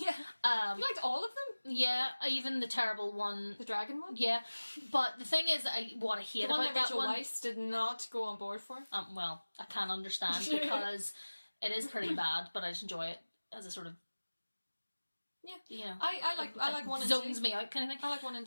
Yeah. You liked all of them? Yeah, even the terrible one. The dragon one? Yeah. But the thing is, what I hate about that one... The one that Rachel Weisz did not go on board for? Well, I can't understand, because it is pretty bad, but I just enjoy it as a sort of... Yeah. You know, I like 1 and 2. Zones me out kind of thing. I like 1 and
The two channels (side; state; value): both; inverted; correlation -1.00